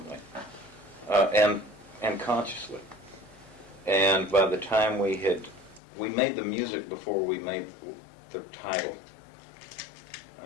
and consciously. And by the time we made the music before we made the title.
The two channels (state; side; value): drops out; right; at 5.8 s